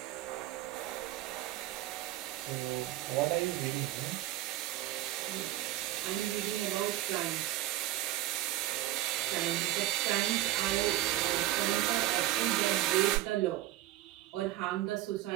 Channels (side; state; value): left; quieter; 15.2 dB